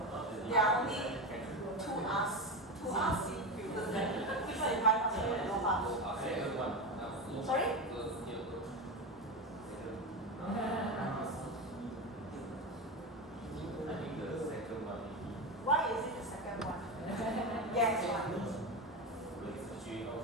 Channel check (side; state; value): both; normal; correlation 0.19